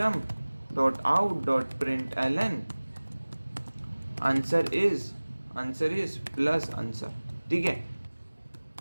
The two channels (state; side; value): inverted; both; correlation -1.00